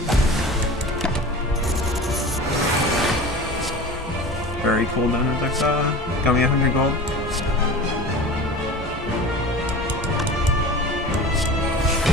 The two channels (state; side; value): normal; both; correlation 0.35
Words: Very cool down Dexa. Got me 100 gold.